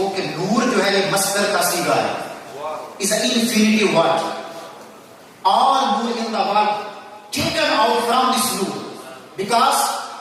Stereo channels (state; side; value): identical; both; correlation 1.00